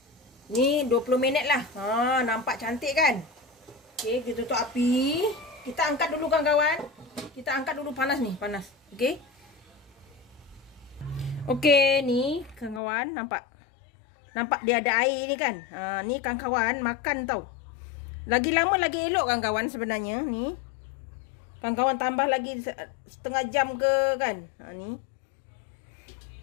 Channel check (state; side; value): drops out; right; at 12.8 s